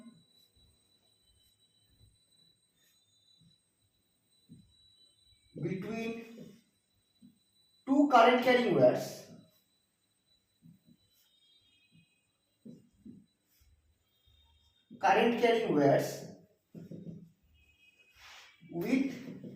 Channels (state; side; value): identical; both; correlation 1.00